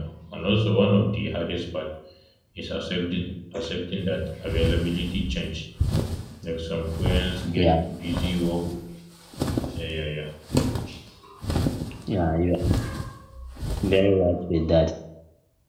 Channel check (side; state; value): both; identical; correlation 1.00